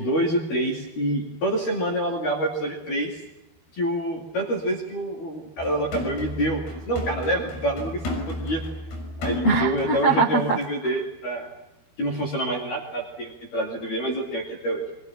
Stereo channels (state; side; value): late; right; 13 ms